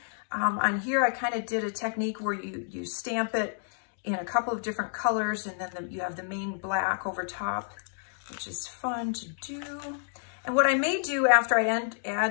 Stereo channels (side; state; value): right; silent; digital silence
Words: On here, I kind of did a technique where you stamp it in a couple of different colors, and then you have the main black over top, which is fun to do. And what I may do after I